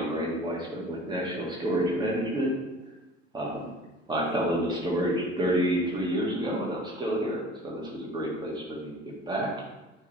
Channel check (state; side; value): normal; both; correlation 0.45